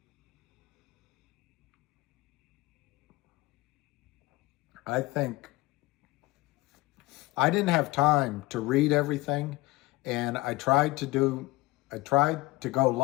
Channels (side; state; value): right; quieter; 20.9 dB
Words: I think I didn't have time to read everything, and I tried to go